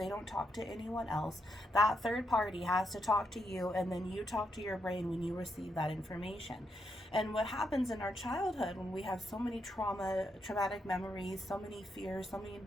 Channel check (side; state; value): both; normal; correlation 0.80